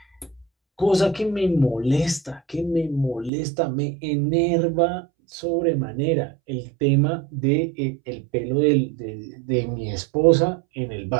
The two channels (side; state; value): left; drops out; at 3.3 s